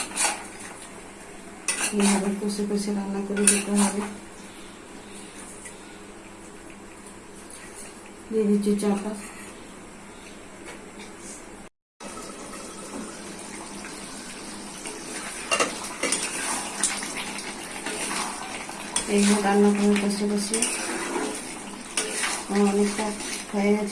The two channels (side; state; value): both; identical; correlation 1.00